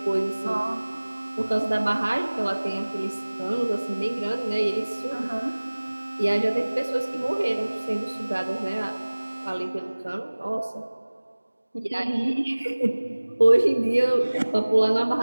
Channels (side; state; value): both; inverted; correlation -1.00